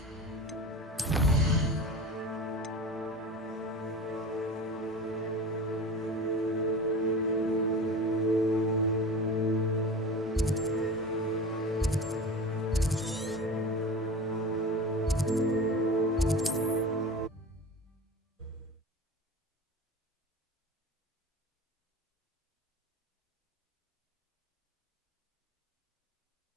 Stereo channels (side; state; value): both; normal; correlation 0.33